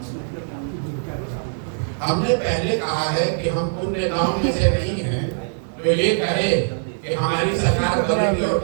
हमने पहले कहा है कि हम उन नेताओं में से नहीं हैं तो ये कहे कि हमारी सरकार बनेगी और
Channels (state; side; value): silent; left; 64 dB below the other